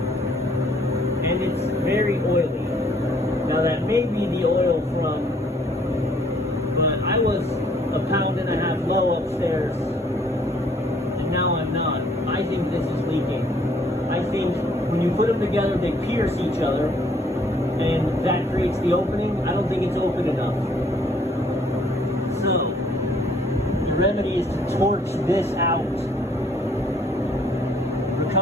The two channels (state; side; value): normal; both; correlation 0.63